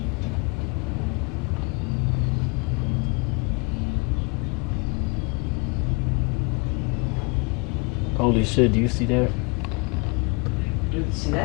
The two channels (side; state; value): right; quieter; 29.9 dB